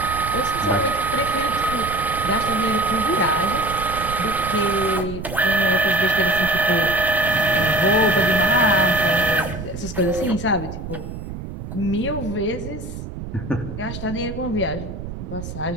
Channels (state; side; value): noise; right; rumble, 9 dB below the sound